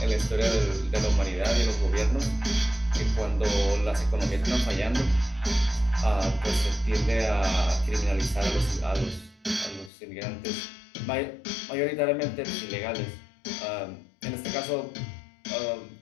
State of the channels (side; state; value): right; drops out; at 9.9 s